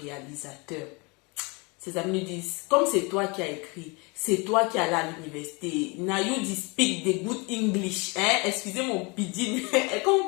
Ses amis lui disent, comme c'est toi qui as écrit, c'est toi qui es allé à l'université, now you speak the good English, hein? Excusez mon pidgin,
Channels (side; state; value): right; quieter; 28.7 dB